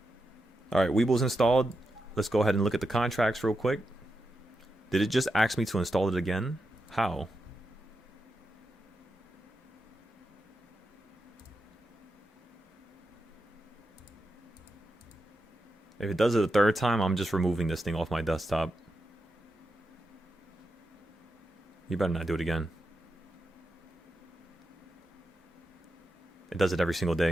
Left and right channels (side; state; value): both; normal; correlation 0.87